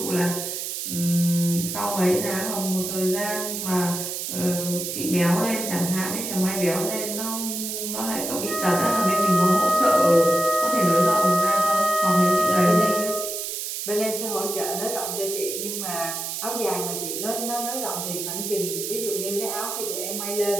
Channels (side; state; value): right; noise; hiss, 4 dB below the sound